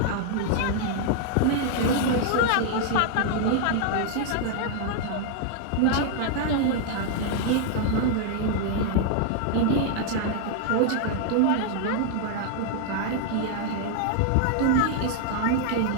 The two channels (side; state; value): both; different; correlation 0.00